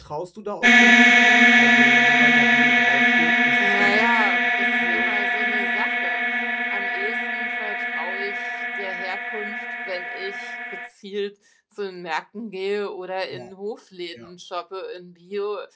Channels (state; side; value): identical; both; correlation 1.00